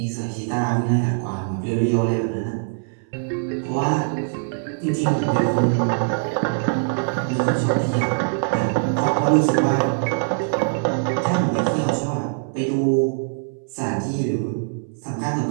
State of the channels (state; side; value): silent; left; 64 dB below the other